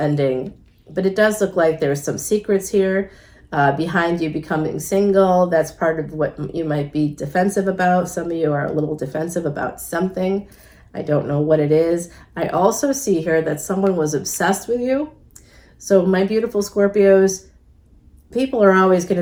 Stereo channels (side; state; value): both; identical; correlation 1.00